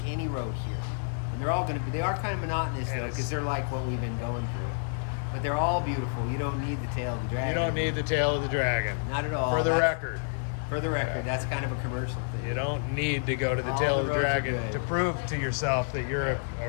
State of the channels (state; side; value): silent; right; digital silence